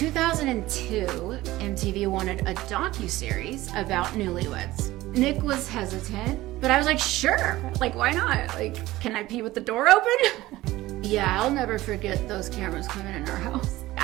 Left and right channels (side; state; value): left; quieter; 17.3 dB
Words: MTV wanted a docuseries about newlyweds. Nick was hesitant, but I was like, sure, like why not? Like, can I pee with the door open? Yeah, I'll never forget those cameras coming in our house.